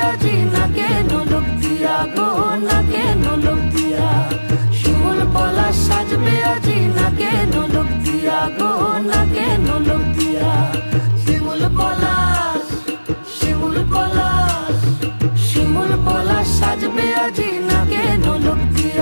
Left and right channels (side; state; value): both; inverted; correlation -1.00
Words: আজি নাকে নলক দিয়া গো, নাকে নলক দিয়া, শিমুল পলাশ সাজবে আজি নাকে নলক দিয়া গো, নাকে নলক দিয়া। শিমুল পলাশ, শিমুল পলাশ, শিমুল পলাশ সাজবে আজি নাকে নলক